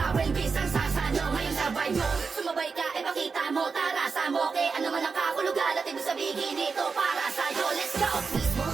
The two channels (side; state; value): left; quieter; 5.0 dB